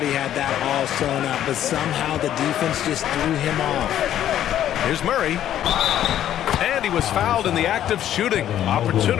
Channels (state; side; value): quieter; right; 11.3 dB